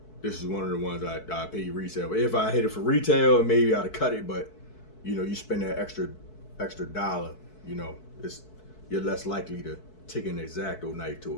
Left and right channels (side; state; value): right; late; 4.6 ms